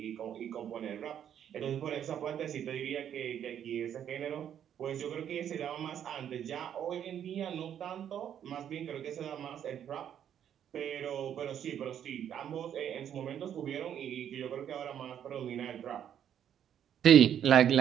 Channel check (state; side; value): quieter; left; 9.5 dB